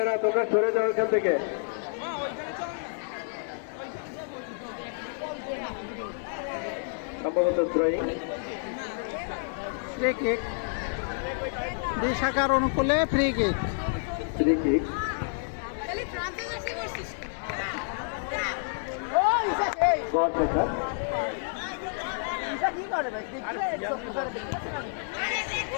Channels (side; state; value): right; silent; digital silence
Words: তোমরা সরে যাও এখান থেকে। সম্ভবত থ্রোয়িং, ফ্রি কিক, দুই শাখার অনুকূলে ফ্রি কিক।